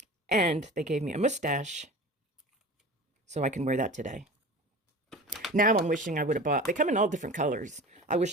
And they gave me a mustache so I can wear that today. Now I'm wishing I would have bought, they come in all different colors. I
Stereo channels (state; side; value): normal; both; correlation 0.36